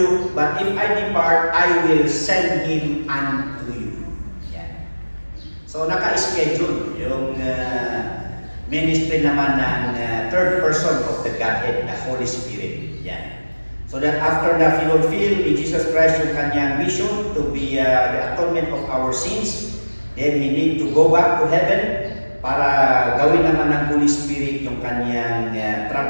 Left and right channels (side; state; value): both; inverted; correlation -1.00